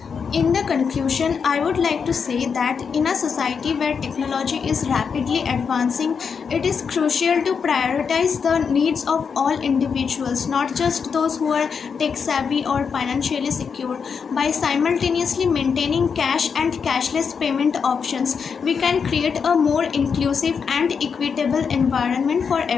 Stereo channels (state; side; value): quieter; right; 6.1 dB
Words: In the conclusion, I would like to say that in a society where technology is rapidly advancing, it is crucial to prioritize the needs of all individuals, not just those who are tech savvy or financially secure. By simultaneously maintaining cash and cashless payment options, we can create a more inclusive and equitable environment for